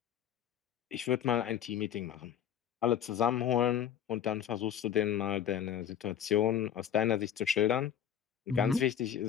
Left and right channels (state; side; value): quieter; right; 9.5 dB